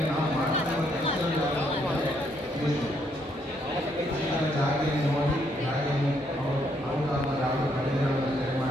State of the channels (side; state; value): both; normal; correlation 0.72